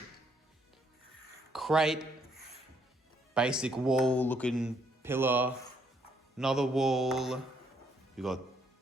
Crate. Basic wall looking pillar. Another wall. We got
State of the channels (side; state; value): both; normal; correlation 0.70